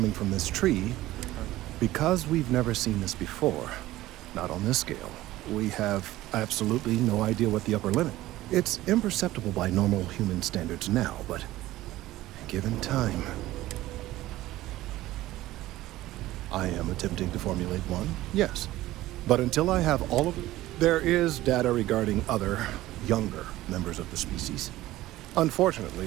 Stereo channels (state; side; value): quieter; left; 16.3 dB